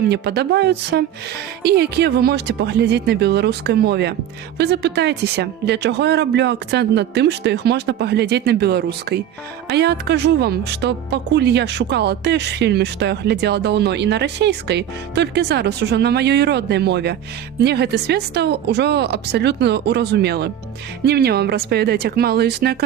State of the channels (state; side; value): quieter; left; 10.5 dB